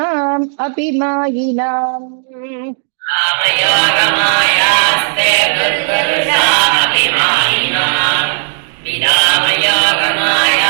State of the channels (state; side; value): silent; left; digital silence